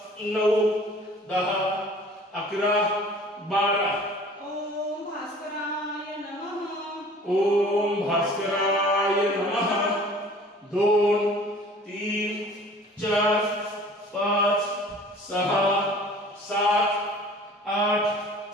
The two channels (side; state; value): both; normal; correlation 0.48